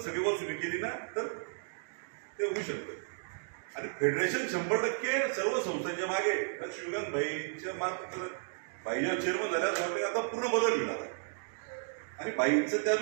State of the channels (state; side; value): silent; left; digital silence